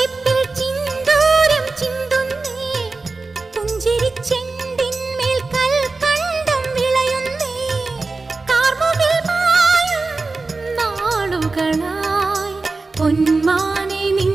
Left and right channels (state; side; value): quieter; left; 3.7 dB